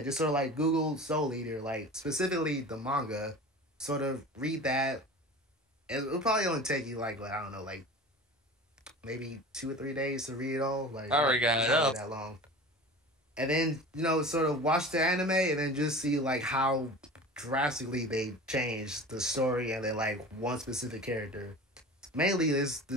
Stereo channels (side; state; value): both; normal; correlation 0.36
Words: sort of like Google Soul Eater, like specifically the manga, sort of read that. It'll probably only take you like I don't know, like maybe 2 or 3 days to read it all. Like I already got it up. That long. And then sort of watch the anime and then just see like how drastically they changed the story and then like one specific character. Mainly this